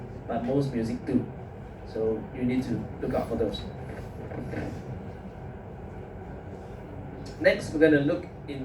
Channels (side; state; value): both; identical; correlation 1.00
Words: but most music do. So you need to look out for those. Next, we're going to look